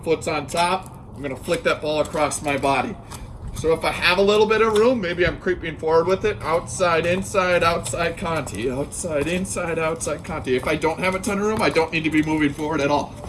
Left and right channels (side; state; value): both; identical; correlation 1.00